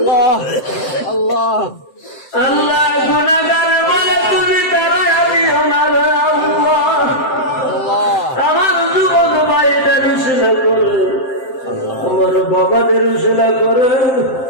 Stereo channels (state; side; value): late; right; 7.7 ms